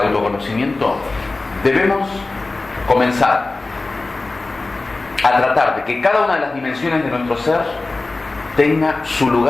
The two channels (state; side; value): quieter; right; 3.3 dB